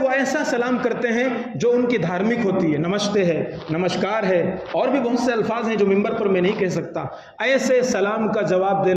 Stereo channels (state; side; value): identical; both; correlation 1.00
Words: وہ ایسا سلام کرتے ہیں جو ان کی دھارمک ہوتی ہے، نمستے ہے، نمسکار ہے، اور بھی بہت سے الفاظ ہیں جو ممبر پر میں نہیں کہہ سکتا، ایسے سلام کا جواب